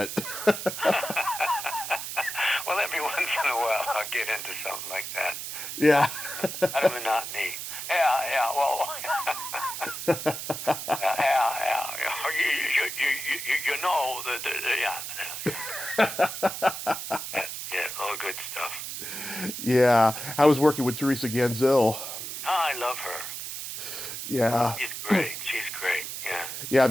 Well, every once in a while I'll get into something like that. Yeah. Out of monotony. Yeah, well. yeah. You know, yeah, all good stuff. Yeah, I was working with Teresa Ganzel. Oh, I love her. Yeah. She's great, yeah. Yeah, I've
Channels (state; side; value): noise; right; hiss, 7 dB below the sound